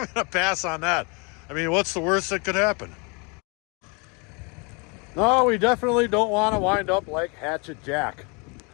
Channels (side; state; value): right; quieter; 31.7 dB